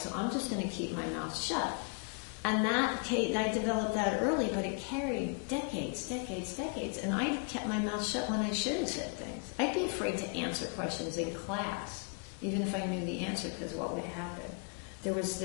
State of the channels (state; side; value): quieter; right; 38.7 dB